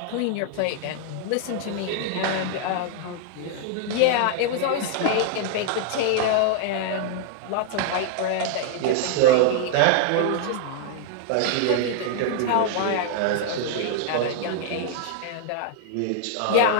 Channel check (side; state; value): both; different; correlation -0.01